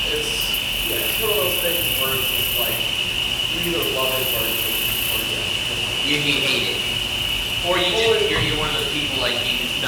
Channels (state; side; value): identical; both; correlation 1.00